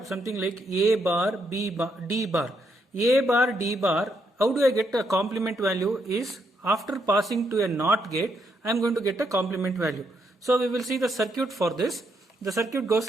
something like a bar b bar d bar. A bar d bar, how do I get a complement value is after passing to a NOT gate I am going to get a complement value. So we will see the circuit for this. The circuit goes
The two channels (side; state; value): both; normal; correlation 0.77